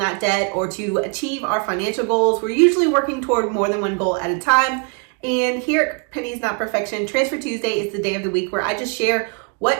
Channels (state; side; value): quieter; left; 36.6 dB